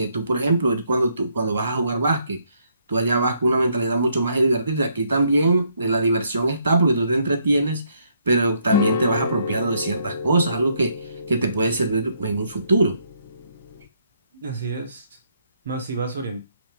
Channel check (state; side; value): inverted; both; correlation -0.72